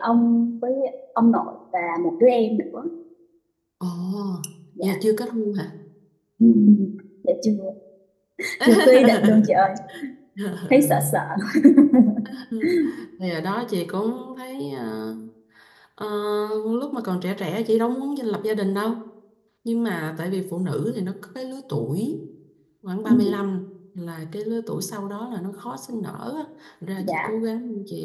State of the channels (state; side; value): identical; both; correlation 1.00